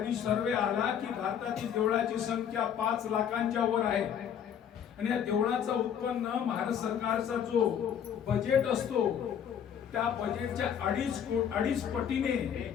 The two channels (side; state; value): right; quieter; 8.6 dB